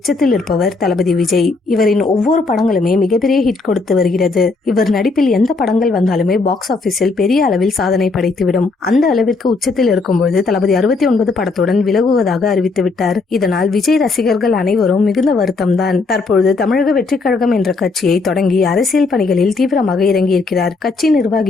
இருப்பவர் தளபதி விஜய். இவரின் ஒவ்வொரு படங்களுமே மிகப்பெரிய ஹிட் கொடுத்து வருகிறது. இவர் நடிப்பில் எந்த படங்கள் வந்தாலுமே பாக்ஸ் ஆபீஸில் பெரிய அளவில் சாதனை படைத்துவிடும். அந்த அளவிற்கு உச்சத்தில் இருக்கும்போது தளபதி 69 படத்துடன் விலகுவதாக அறிவித்துவிட்டார். இதனால் விஜய் ரசிகர்கள் அனைவரும் மிகுந்த வருத்தம் தான். தற்பொழுது தமிழக வெற்றி கழகம் என்ற கட்சியை தொடங்கி அரசியல் பணிகளில் தீவிரமாக இறங்கியிருக்கிறார். கட்சி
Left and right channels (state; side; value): quieter; right; 3.9 dB